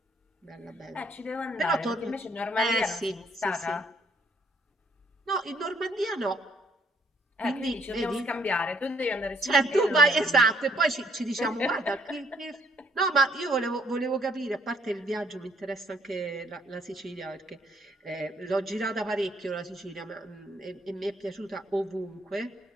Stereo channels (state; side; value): normal; both; correlation 0.66